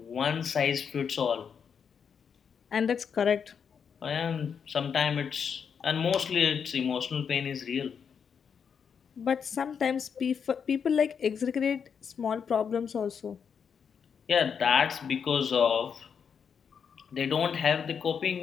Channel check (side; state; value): right; quieter; 6.9 dB